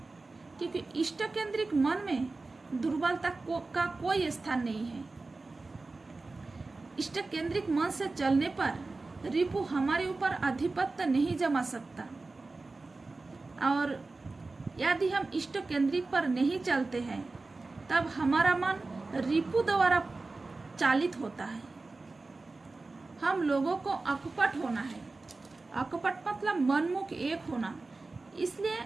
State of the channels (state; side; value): quieter; left; 3.5 dB